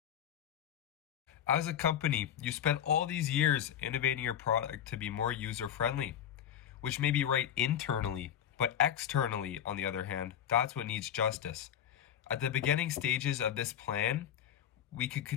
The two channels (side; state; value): right; quieter; 9.9 dB